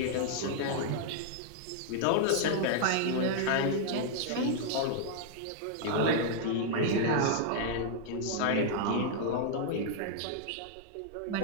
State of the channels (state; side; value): different; both; correlation -0.01